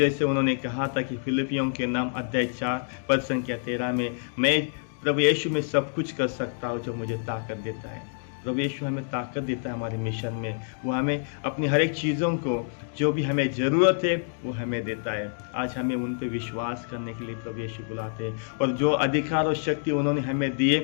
उन्होंने कहा था कि फिलिपियों के नाम अध्याय 4 पद संख्या 13 में, मैं प्रभु यीशु में सब कुछ कर सकता हूँ जो मुझे ताकत देता है। प्रभु यीशु हमें ताकत देता है हमारे मिशन में। वो हमें अपनी हर एक चीज़ों को जो भी हमें ज़रूरत है वो हमें देता है। आज हमें उन पे विश्वास करने के लिए प्रभु यीशु बुलाते हैं, और जो अधिकार और शक्ति उन्होंने हमें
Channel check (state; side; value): silent; right; digital silence